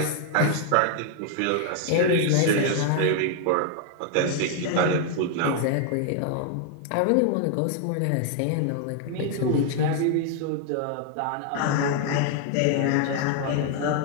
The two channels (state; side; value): different; both; correlation 0.00